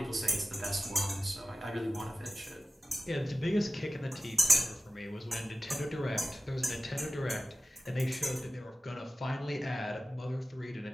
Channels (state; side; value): normal; both; correlation 0.95